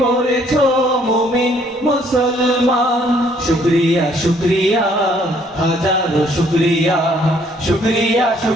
করেছো মুমিন মুসলমান। শুকরিয়া শুকরিয়া হাজারো শুকরিয়া, শুকরিয়া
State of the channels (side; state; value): both; normal; correlation 0.64